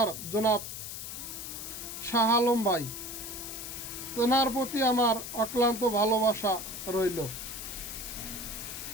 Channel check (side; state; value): left; noise; hiss, 8 dB below the sound